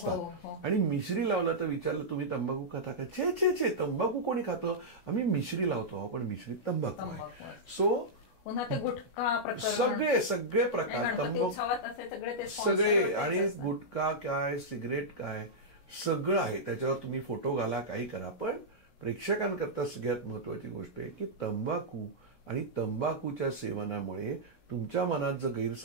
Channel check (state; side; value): late; right; 17 ms